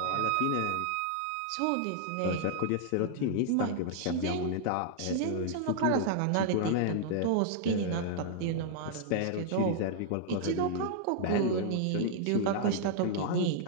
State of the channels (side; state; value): both; different; correlation -0.01